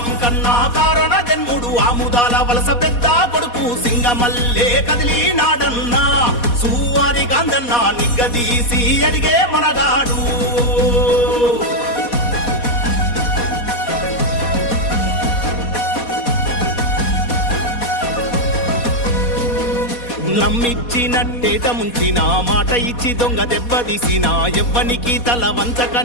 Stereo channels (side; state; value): right; late; 4.2 ms